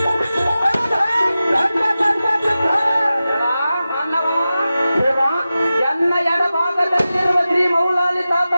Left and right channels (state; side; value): inverted; both; correlation -0.94